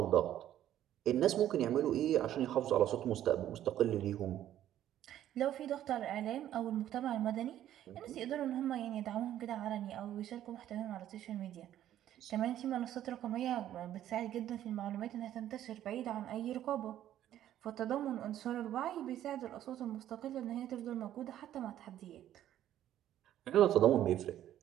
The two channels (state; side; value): quieter; left; 11.9 dB